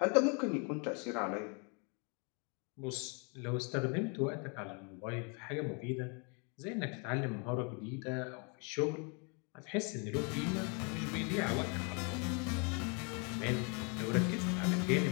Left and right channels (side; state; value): right; quieter; 35.4 dB